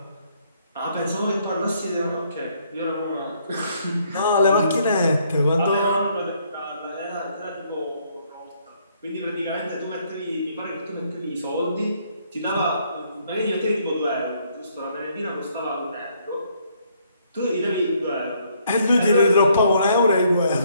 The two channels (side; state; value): both; inverted; correlation -0.68